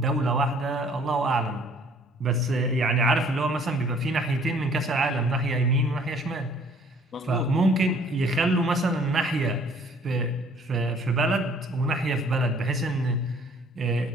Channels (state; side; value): normal; both; correlation 0.57